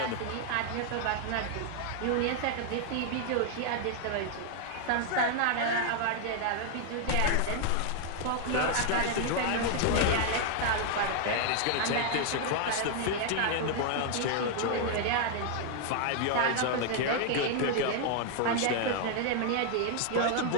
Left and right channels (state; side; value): different; both; correlation 0.00